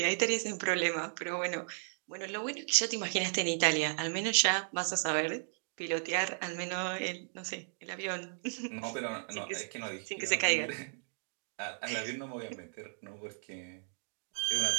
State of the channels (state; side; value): silent; left; digital silence